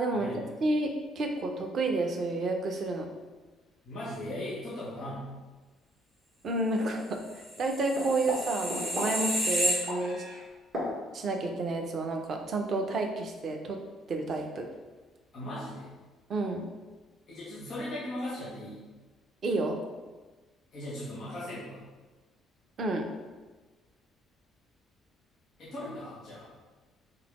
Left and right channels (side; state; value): both; normal; correlation 0.67